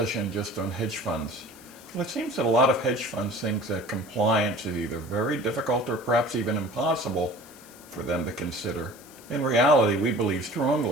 just on hedge funds? Well, it seems that a lot of hedge funds think that compliance is either very difficult or perhaps even impossible for them to consider. In reality, we believe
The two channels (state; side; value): noise; left; hiss, 21 dB below the sound